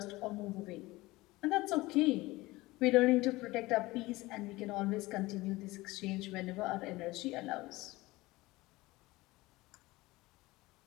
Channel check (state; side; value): quieter; right; 20.1 dB